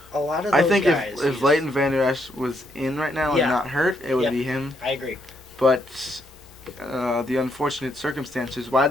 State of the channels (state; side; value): normal; both; correlation 0.75